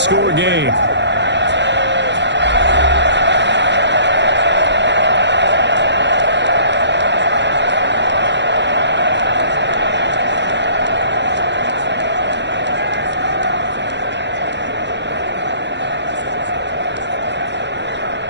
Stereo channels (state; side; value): late; left; 0.52 ms